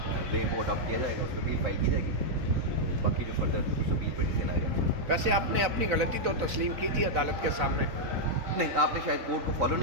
وے وہ اڈاپٹ کیا جائے گا، اس پہ اپیل فائل کی جائے گی، باقی جو فردر اس اپیل پہ ڈیسیژن آئے گا۔ ویسے آپ نے اپنی غلطی تو تسلیم کی تھی عدالت کے سامنے؟ نہیں، آپ نے شاید کورٹ کو فالو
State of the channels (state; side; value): late; left; 4.0 ms